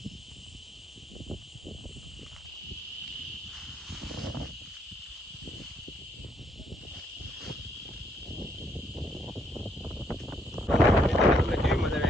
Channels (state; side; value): normal; both; correlation 0.71